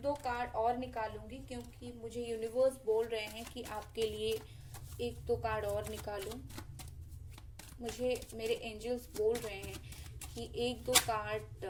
दो कार्ड और निकालूंगी क्योंकि मुझे यूनिवर्स बोल रहे हैं कि आपके लिए एक दो कार्ड और निकालूं। मुझे मेरे एंजल्स बोल रहे हैं कि एक दो कार्ड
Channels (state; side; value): identical; both; correlation 1.00